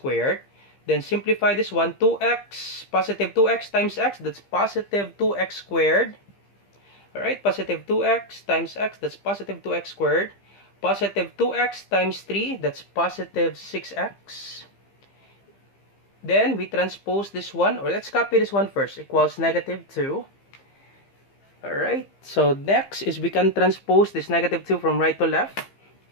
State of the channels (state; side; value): late; right; 15 ms